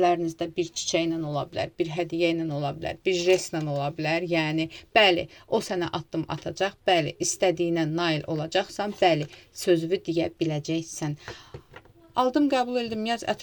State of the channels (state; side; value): identical; both; correlation 1.00